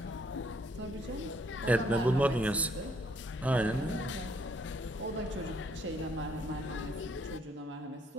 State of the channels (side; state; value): both; normal; correlation 0.67